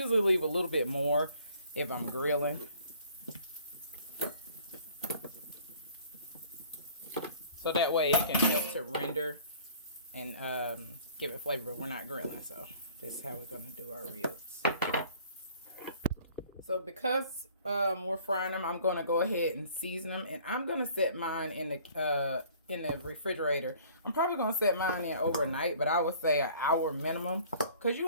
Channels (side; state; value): both; inverted; correlation -0.53